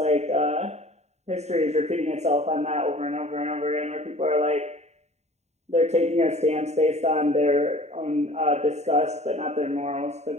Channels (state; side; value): late; left; 0.32 ms